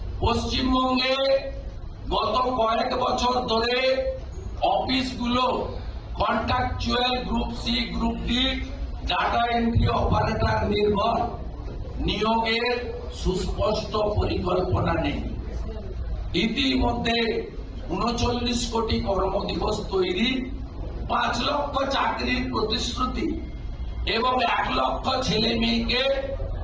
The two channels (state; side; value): identical; both; correlation 1.00